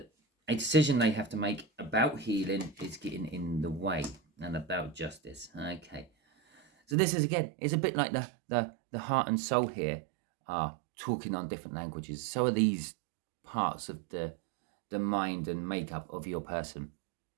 a decision they have to make about healing is getting in the way and about justice. Okay. So this is, again, it's a bit like the heart and soul here are talking on different languages. So are these parts of the mind and makeup of your person.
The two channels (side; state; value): left; drops out; at 7.0 s